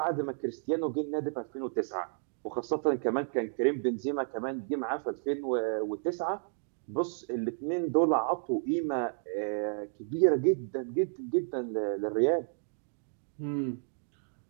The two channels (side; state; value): left; silent; digital silence